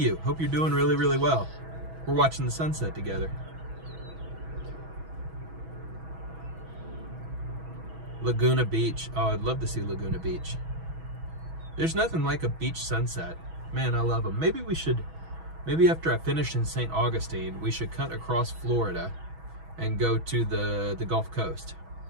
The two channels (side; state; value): left; late; 6.2 ms